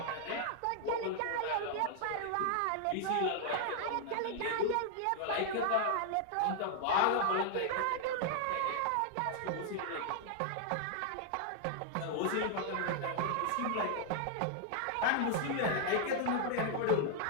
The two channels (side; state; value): both; different; correlation 0.00